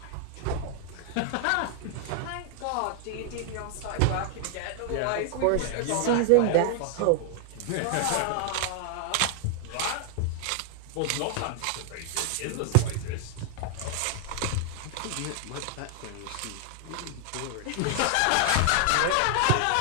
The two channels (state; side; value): different; both; correlation 0.00